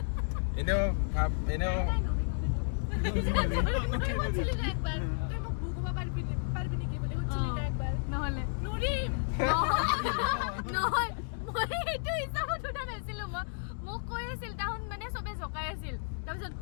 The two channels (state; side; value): silent; right; digital silence